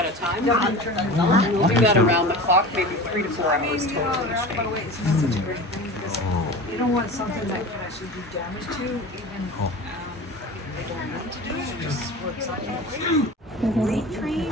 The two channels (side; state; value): both; normal; correlation 0.34